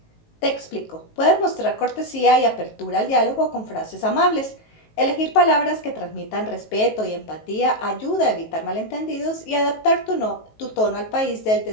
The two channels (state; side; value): late; right; 19 ms